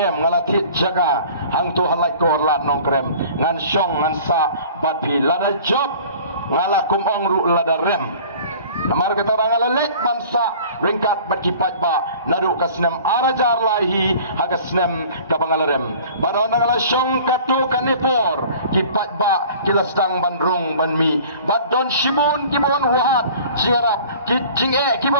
Ngalatit Jaga Hang Tu Halak Kor Lat Nong Krem Ngan Shong Ngan Sa Bat Pi Lada Job Ngalakum Ong Ru Lada Rem Namar keterang alek bangsa ringkat berkipat ba nadu kasnem arajar lahi hagasnem kabangalarem badon ngala syong katu kanipor kipat ba kilastang bandrung banmi badon shibun kibon wahat jingarap kijinge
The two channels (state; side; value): inverted; both; correlation -0.46